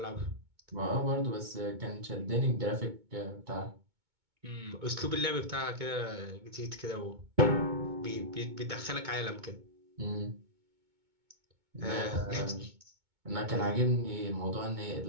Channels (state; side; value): late; left; 2.2 ms